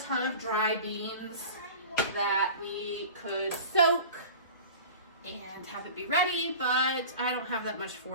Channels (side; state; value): both; inverted; correlation -0.37